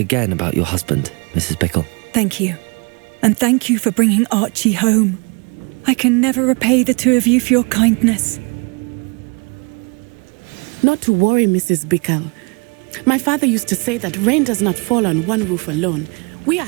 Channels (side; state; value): left; quieter; 32.3 dB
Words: about your husband, Mrs. Bickle. Thank you. And thank you for bringing Archie home. I can never repay the two of you for your kindness. Not to worry, Mrs. Bickle. My father used to say that rain does not fall on one roof alone. We are